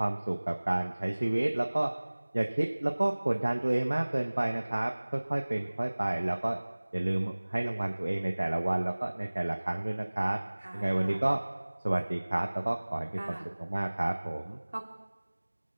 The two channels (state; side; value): inverted; both; correlation -1.00